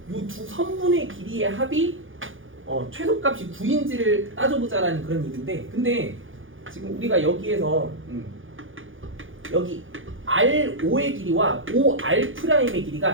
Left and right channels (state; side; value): late; left; 0.58 ms